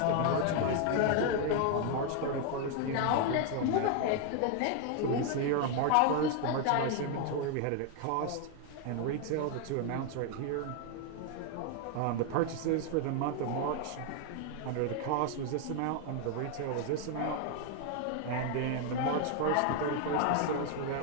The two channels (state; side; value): different; both; correlation 0.00